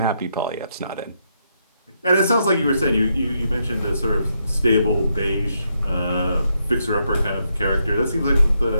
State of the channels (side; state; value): both; inverted; correlation -0.79